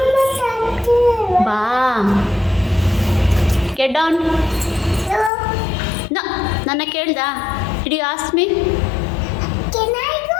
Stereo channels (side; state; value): right; drops out; at 5.3 s